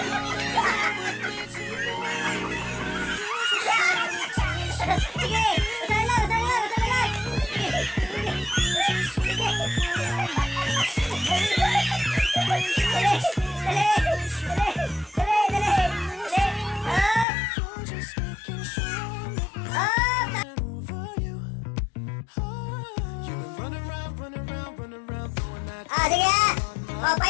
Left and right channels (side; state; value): right; drops out; at 17.2 s